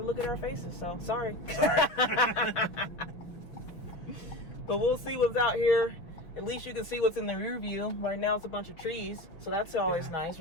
at our faces, so sorry. But we'll see what's out here. At least you can see what's in the rear view. Right now it's a bunch of trees, so that's always nice,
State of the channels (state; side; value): late; right; 6.1 ms